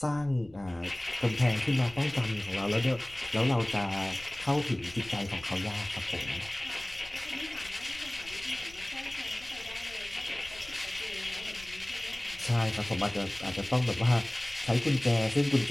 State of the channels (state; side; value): noise; left; rumble, 20 dB below the sound